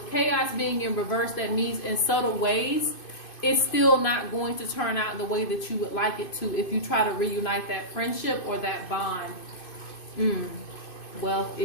chaos being in reverse, that means in subtle ways, it's still not going to turn out the way that you would like it to if you try to reunite that friendship or that bond. Wealth,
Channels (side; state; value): right; late; 2.5 ms